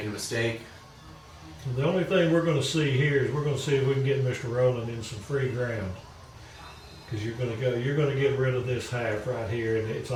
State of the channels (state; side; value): identical; both; correlation 1.00